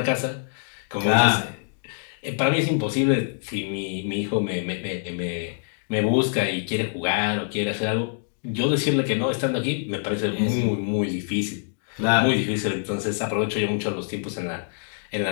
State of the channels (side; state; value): right; silent; digital silence